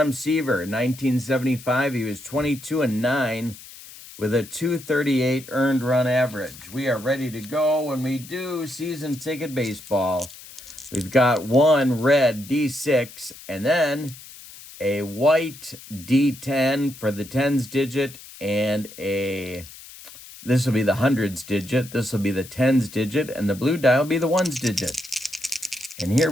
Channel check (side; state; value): left; noise; hiss, 17 dB below the sound